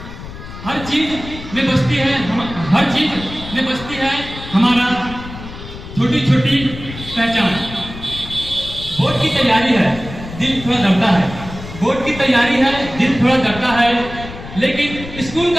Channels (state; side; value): noise; left; rumble, 12 dB below the sound